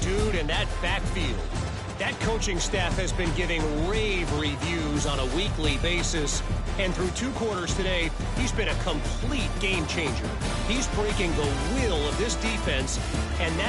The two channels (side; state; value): both; identical; correlation 1.00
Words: dude in that backfield. That coaching staff has been giving rave reviews on a weekly basis. And through 2 quarters today, he's been a complete game changer. He's breaking the will of this defense, and